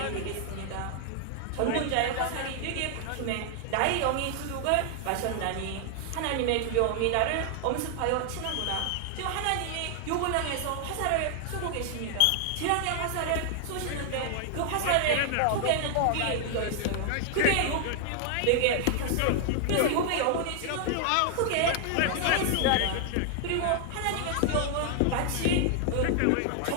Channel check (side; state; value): both; different; correlation 0.00